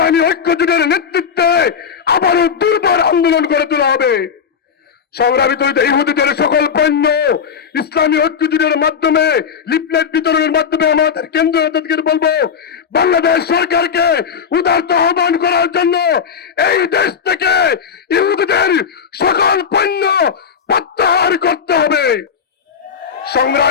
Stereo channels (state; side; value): quieter; right; 6.9 dB